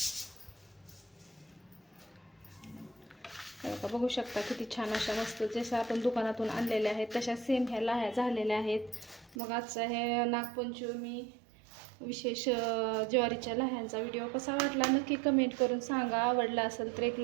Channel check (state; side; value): drops out; left; at 9.3 s